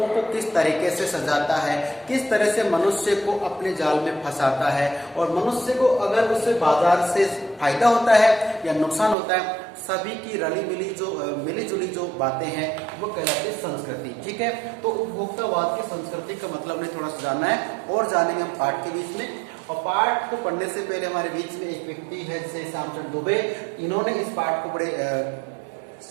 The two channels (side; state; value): left; drops out; at 9.2 s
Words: को किस तरीके से सजाता है, किस तरह से मनुष्य को अपने जाल में फंसाता है, और मनुष्य को अगर उससे बाजार से फायदा होता है या नुकसान होता है, सभी की मिली जुली जो बातें हैं वो कहलाती है संस्कृति। ठीक है, तो उपभोक्तावाद की संस्कृति का मतलब हमें थोड़ा सा जानना है और जानेंगे हम पाठ के बीच में। और पाठ को पढ़ने से पहले हमारे बीच में एक व्यक्ति है जैसे श्यामचरण दुबे, इन्होंने इस पाठ को बड़े